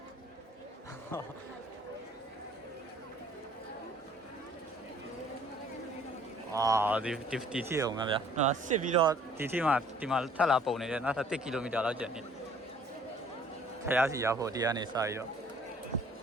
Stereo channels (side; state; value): both; normal; correlation 0.56